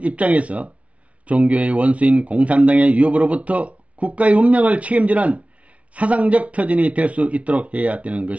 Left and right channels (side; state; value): left; late; 0.065 ms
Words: 입장에서 종교의 원수인 공산당의 위협으로부터 국가의 운명을 책임지는 사상적 터전이 될 수 있도록 해야 되는